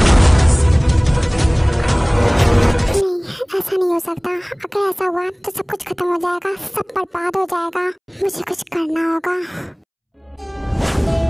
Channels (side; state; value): both; identical; correlation 1.00